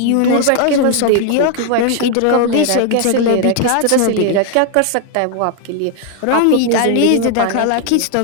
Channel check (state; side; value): different; both; correlation 0.00